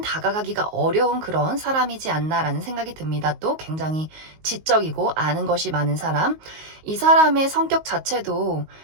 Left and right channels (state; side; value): late; left; 19 ms